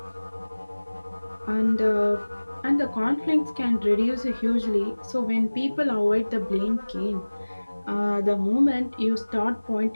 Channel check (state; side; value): inverted; both; correlation -1.00